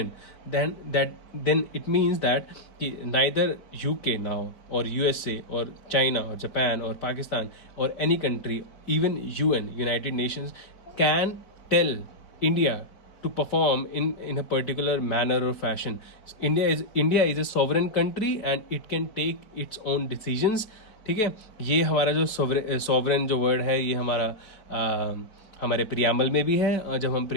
then it means that कि नाइदर यूके नाउ और यूएसए और चाइना और जापान और पाकिस्तान और any country, even UN, United Nations, can tell India to perform in a particular manner or fashion. India is a sovereign country and it can take its own decisions. ठीक है, ये हमारा जो sovereign जो word है ये हमारे preamble में भी है, और जब हम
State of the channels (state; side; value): late; right; 4.6 ms